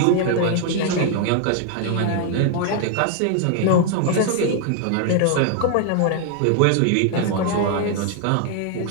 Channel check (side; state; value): both; different; correlation 0.00